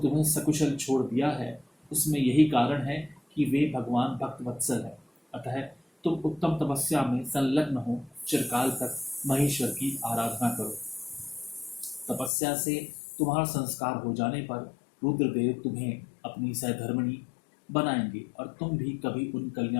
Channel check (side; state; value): right; drops out; at 12.3 s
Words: सकुशल छोड़ दिया है, उसमें यही कारण है कि वे भगवान भक्त वत्सल है। अतः तुम उत्तम तपस्या में संलग्न हो चिरकाल तक महेश्वर की आराधना करो। तपस्या से तुम्हारा संस्कार हो जाने पर रुद्रदेव तुम्हें अपनी सहधर्मिणी बनाएंगे और तुम भी कभी उन